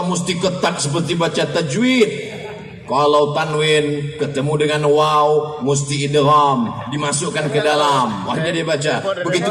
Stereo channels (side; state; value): both; identical; correlation 1.00